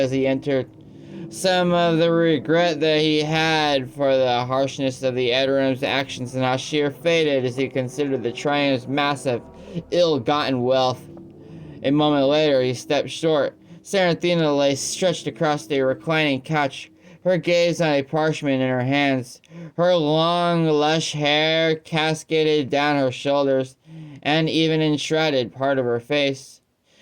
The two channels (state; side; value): identical; both; correlation 1.00